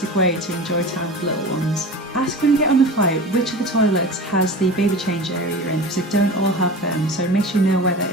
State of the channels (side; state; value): both; normal; correlation 0.34